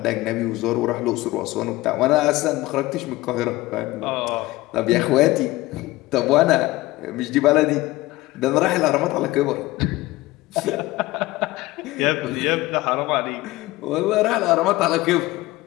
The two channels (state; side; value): quieter; right; 19.0 dB